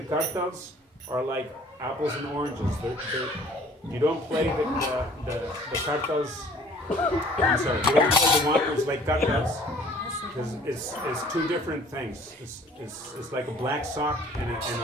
khartals are like apples and oranges. You don't play the khartals. I'm sorry. You don't play the whompers like khartals because it's two different things. It's like a black sock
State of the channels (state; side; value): normal; both; correlation 0.53